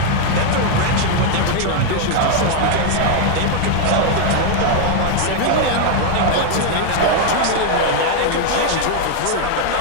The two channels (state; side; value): different; both; correlation 0.00